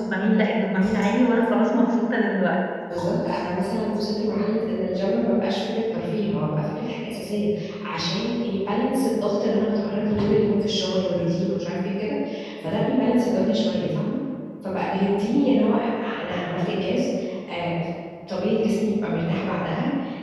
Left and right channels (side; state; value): both; identical; correlation 1.00